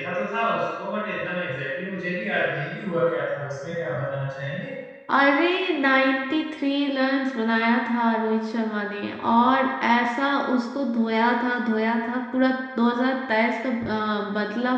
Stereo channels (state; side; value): identical; both; correlation 1.00